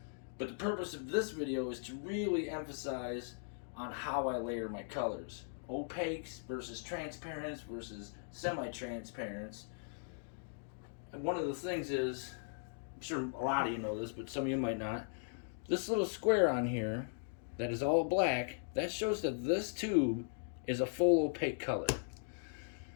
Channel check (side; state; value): right; silent; digital silence